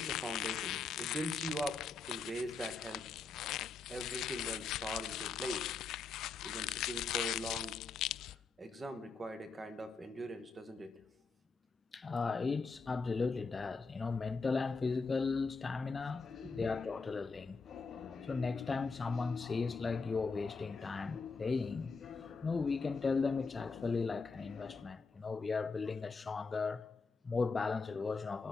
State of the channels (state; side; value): quieter; right; 4.5 dB